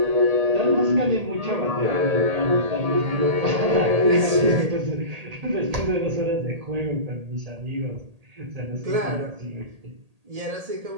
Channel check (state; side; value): late; left; 1.8 ms